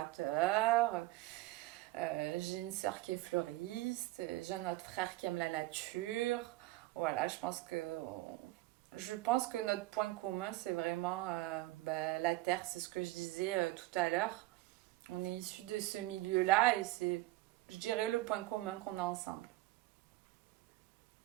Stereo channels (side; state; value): left; quieter; 18.4 dB